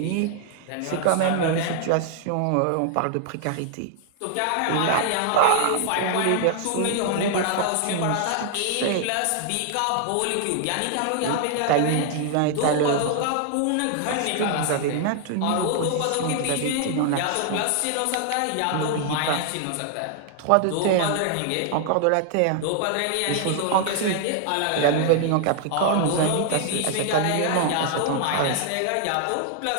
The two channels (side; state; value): both; different; correlation 0.00